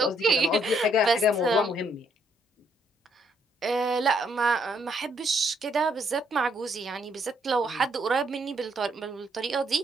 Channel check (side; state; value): both; normal; correlation 0.71